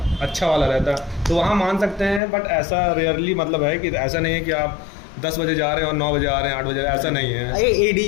अच्छा वाला रहता है, तो वहाँ मान सकते हैं। बट ऐसा रेयरली मतलब है कि ऐसा नहीं है कि आप 10 बजे जा रहे हैं और 9 बजे आ रहे हैं 8 बजे, ऐसा नहीं है।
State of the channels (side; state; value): right; drops out; at 2.2 s